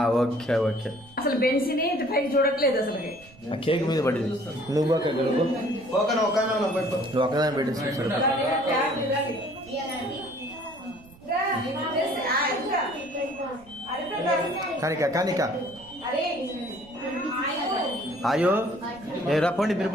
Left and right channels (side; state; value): right; noise; rumble, 24 dB below the sound